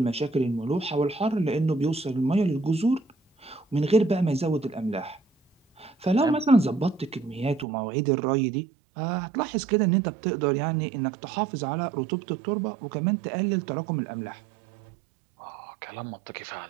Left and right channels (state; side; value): drops out; left; at 7.7 s